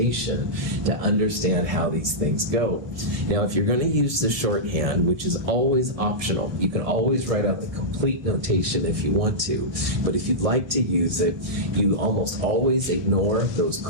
to understand how these things go. Now, if you're going to use the shorthand, which is always optional, you can always write out the complete notation if you want to. But if you'd like to use it, you almost always ignore those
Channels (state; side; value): late; left; 1.6 ms